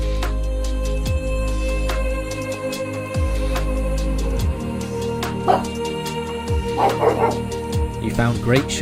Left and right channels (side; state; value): both; identical; correlation 1.00